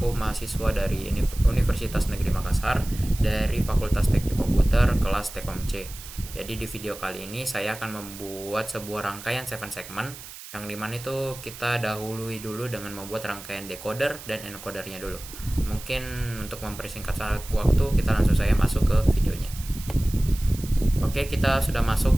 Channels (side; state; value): right; noise; hiss, 14 dB below the sound